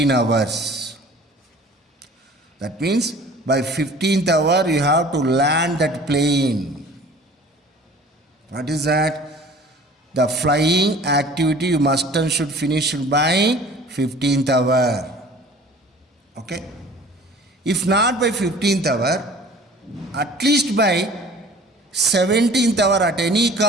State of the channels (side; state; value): both; normal; correlation 0.47